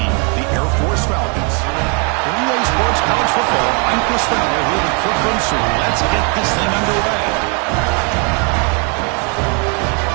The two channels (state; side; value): quieter; left; 36.1 dB